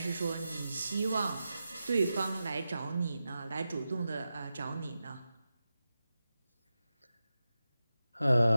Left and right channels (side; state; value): both; inverted; correlation -0.92